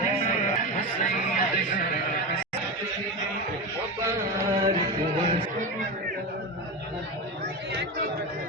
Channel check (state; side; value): normal; both; correlation 0.20